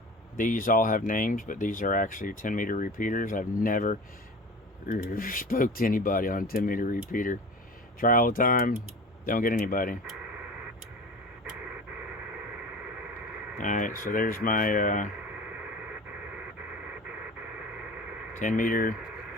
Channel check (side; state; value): both; normal; correlation 0.37